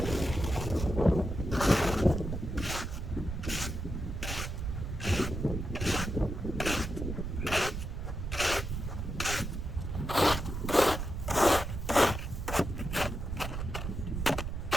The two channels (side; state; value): right; noise; rumble, 4 dB below the sound